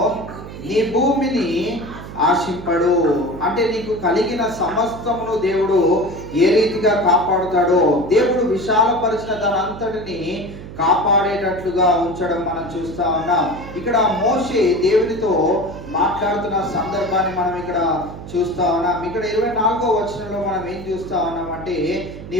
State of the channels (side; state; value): right; noise; hum, 12 dB below the sound